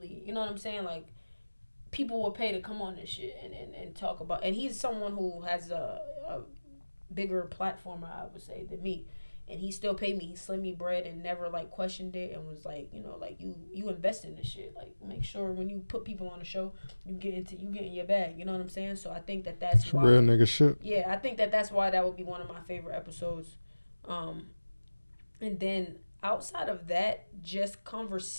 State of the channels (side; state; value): both; inverted; correlation -1.00